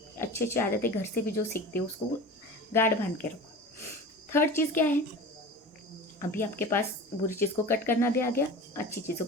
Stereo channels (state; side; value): normal; both; correlation 0.35